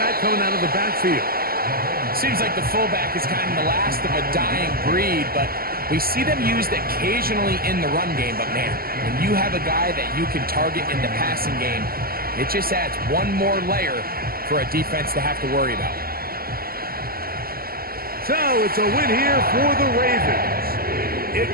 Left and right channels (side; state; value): left; late; 0.43 ms